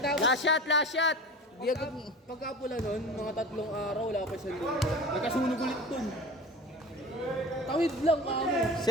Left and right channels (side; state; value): both; normal; correlation 0.36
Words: Last shot, last shot! Di agad. pagkapula nun, mga 3 araw, wala pa siyang linggo. Nagkasunog ulit dun. Tawid lang kamo.